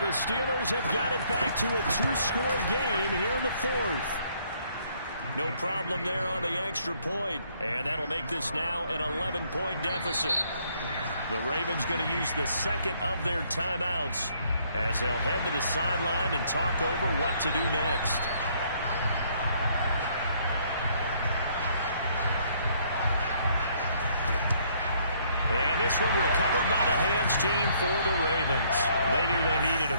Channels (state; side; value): inverted; both; correlation -0.66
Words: the Steelers have got it back to a 2-score game here in the fourth. No problem there on the extra point. And that'll make this now an 11-point deficit. The Ravens going to use the second of their timeouts as they'll head to the sideline and talk over what to do next. And this one recovered by the hands team for the Ravens. They knew they needed